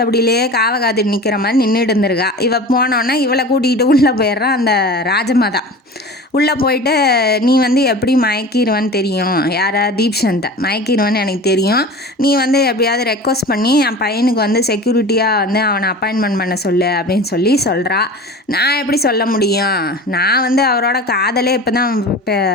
காவை காத்துட்டு நிற்கிற மாதிரி நின்றுட்டு இருந்திருக்கா. இவள் போனோன்னே இவளை கூட்டிகிட்டு உள்ளே போயிடுறான் அந்த ராஜமாதா. உள்ளே போயிட்டு நீ வந்து எப்படி மயக்கிடுவேன்னு தெரியும், யாரா தீப்சந்தை மயக்கிடுவேன்னு எனக்கு தெரியும், நீ வந்து எப்படியாவது ரெக்வஸ்ட் பண்ணி என் பையனுக்கு வந்து செக்யூரிட்டியாக வந்து அவனை அப்பாயின்மெண்ட் பண்ண சொல்லு அப்படின்னு சொல்லி சொல்கிறா. நான் எப்படி சொல்ல முடியும், நான் வந்து அவரோட காதலே இப்போ தான்,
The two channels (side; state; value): both; normal; correlation 0.36